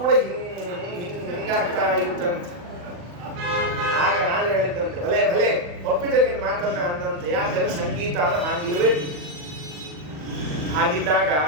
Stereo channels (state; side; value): late; left; 40 ms